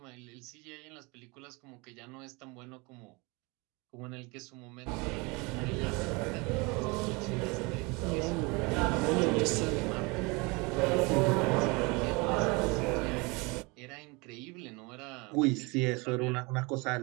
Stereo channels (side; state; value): left; quieter; 27.1 dB